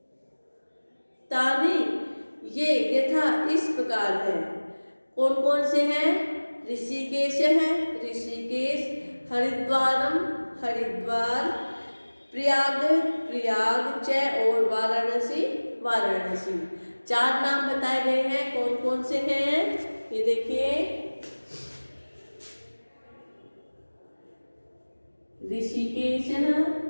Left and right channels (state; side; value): inverted; both; correlation -1.00